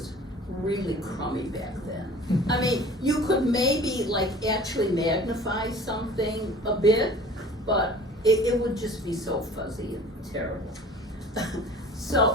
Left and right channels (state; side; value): normal; both; correlation 0.45